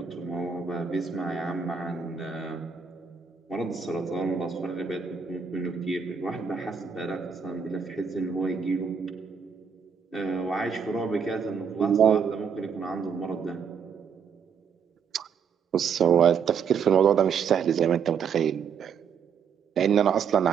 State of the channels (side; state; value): left; quieter; 6.6 dB